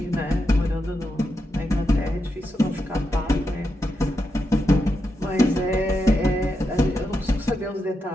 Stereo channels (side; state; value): both; normal; correlation 0.85